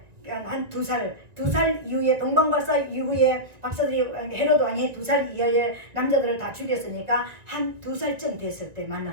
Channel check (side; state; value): left; late; 1.8 ms